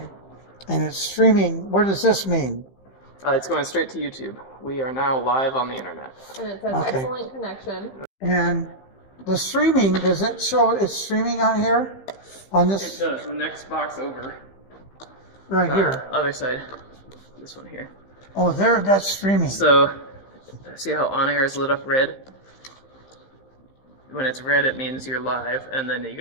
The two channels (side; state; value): right; late; 15 ms